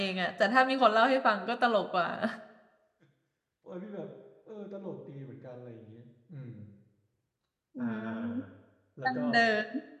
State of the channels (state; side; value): identical; both; correlation 1.00